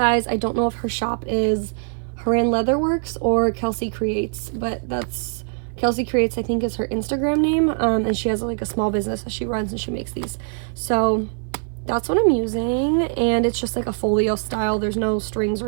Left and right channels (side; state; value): left; silent; 56 dB below the other